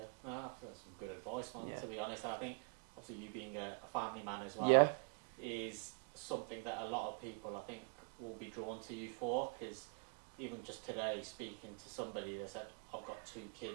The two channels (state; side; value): quieter; left; 39.4 dB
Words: I feel that's some good advice, man, to be honest. And I think, obviously, you being a family man as well is something that a lot of people, I think, will be drawn to you for, because even just today, speaking to somebody, they said, I've got 2